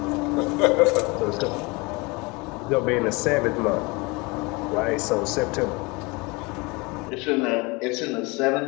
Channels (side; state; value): right; quieter; 26.4 dB